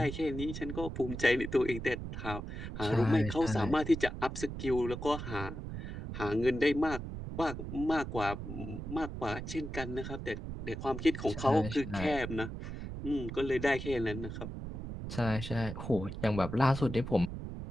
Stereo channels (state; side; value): noise; right; rumble, 7 dB below the sound